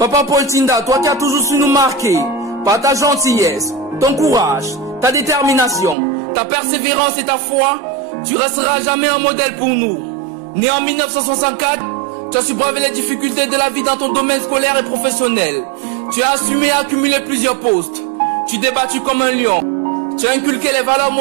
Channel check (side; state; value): left; drops out; at 6.0 s